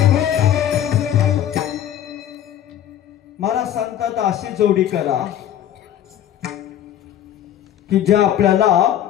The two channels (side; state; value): right; quieter; 10.9 dB